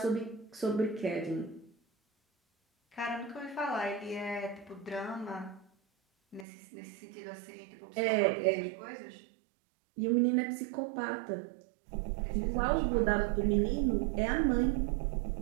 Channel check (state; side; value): drops out; left; at 6.5 s